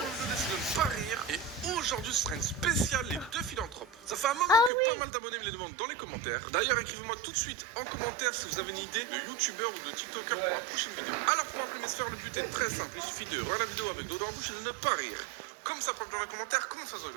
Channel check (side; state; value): left; drops out; at 4.7 s